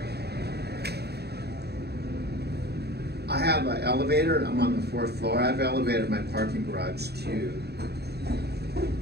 I have an elevator. I'm on the 4th floor. I have an elevator in my parking garage too.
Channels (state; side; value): late; left; 0.47 ms